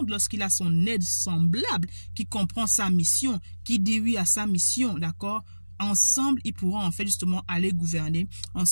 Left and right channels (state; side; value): inverted; both; correlation -1.00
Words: lorsqu'il a son aide semblable, qui comprend sa mission, qui dit oui à sa mission, d'accord? Ensemble, ils pourront en fait justement aller gouverner.